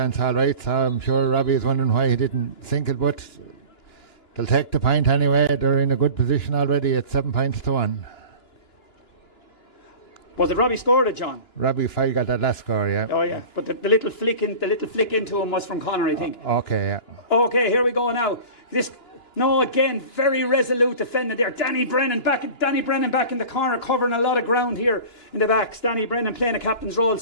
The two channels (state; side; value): late; right; 2.9 ms